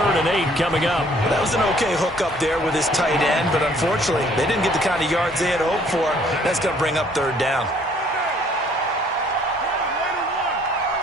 and 8 coming up. That was an okay hook up there with his tight end, but unfortunately, they didn't get the kind of yards they had hoped for. That's going to bring up 3rd down.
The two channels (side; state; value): both; normal; correlation 0.60